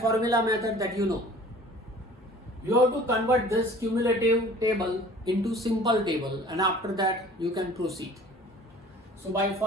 method that you know. You have to convert this cumulative table into simple table, and after that you can proceed. So by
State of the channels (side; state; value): both; normal; correlation 0.48